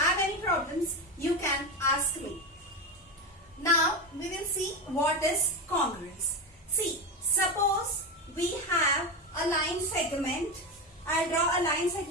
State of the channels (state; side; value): normal; both; correlation 0.16